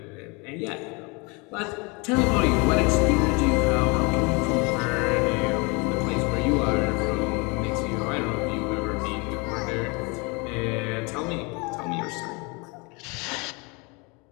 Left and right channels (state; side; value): quieter; right; 29.2 dB